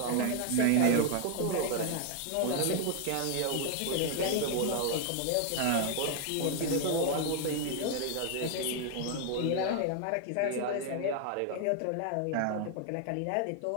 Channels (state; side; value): different; both; correlation 0.00